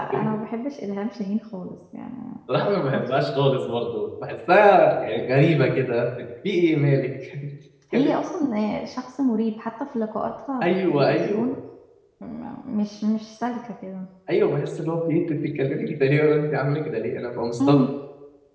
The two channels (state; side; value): identical; both; correlation 1.00